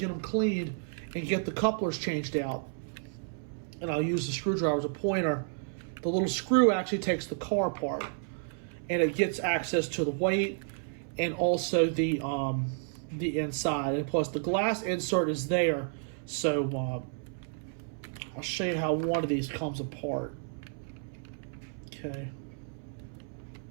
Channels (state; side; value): silent; left; 57 dB below the other